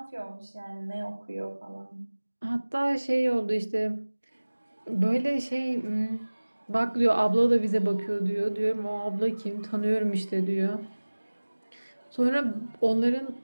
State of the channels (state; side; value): inverted; both; correlation -1.00